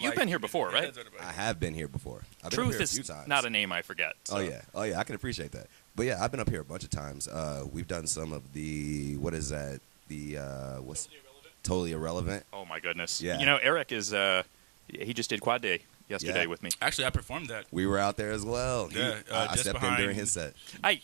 been here before, right? That's everybody. I have been here before. I've been up Truth here a few is times. not a name I forget. So. Oh yeah, I can appreciate that. But yeah, I've been up here a bunch of times. We've done some of the what's Totally Irrelevant. Oh, my goodness. Yeah. You know, Eric is, he just did Quad Day yesterday Yeah. with me. Actually, I performed that. We were out there as well. Yeah, I just stepped in during behind- his set.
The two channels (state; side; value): silent; left; digital silence